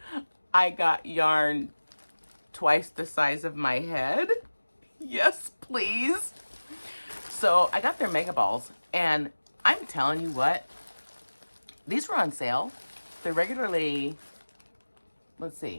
I got yarn twice the size of my head. Yes, please. So I got their mega balls, and I'm telling you what, these were on sale. They're regularly, let's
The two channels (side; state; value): both; inverted; correlation -1.00